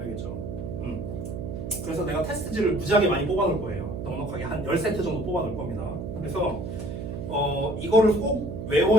그래서 내가 테스트지를 무지하게 많이 뽑아놓을 거예요. 넉넉하게 한 10세트 정도 뽑아놓을 겁니다. 그래서 이거를 꼭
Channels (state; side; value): noise; right; hum, 6 dB below the sound